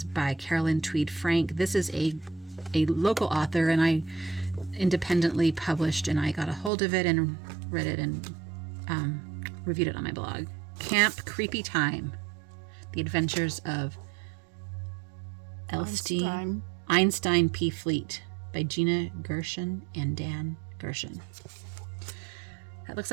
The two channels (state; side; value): drops out; left; at 6.7 s